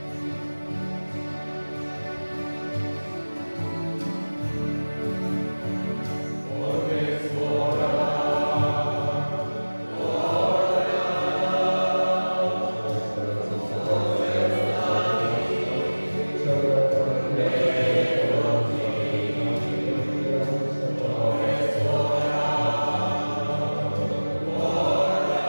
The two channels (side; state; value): both; inverted; correlation -1.00